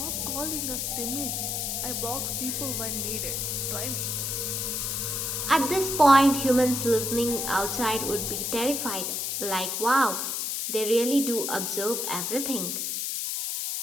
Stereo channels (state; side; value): noise; left; hiss, 1 dB below the sound